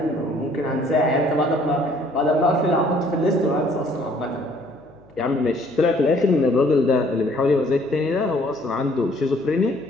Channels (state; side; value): noise; left; hum, 27 dB below the sound